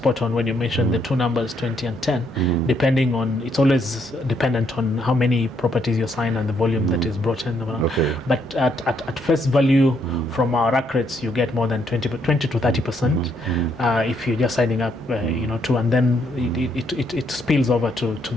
on when you mentioned the two numbers, 20 and 10, depending on, it's always dependent on how many properties you sign and the volume that is brought in. Okay. But at face value, from our rack rates, you get more than 20 to 30% if you're just signing up, and then it spills over to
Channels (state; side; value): normal; both; correlation 0.73